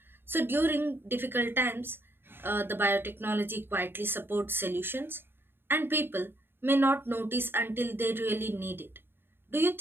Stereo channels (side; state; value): left; late; 0.10 ms